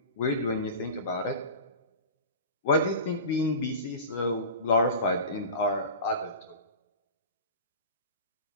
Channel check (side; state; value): both; inverted; correlation -0.33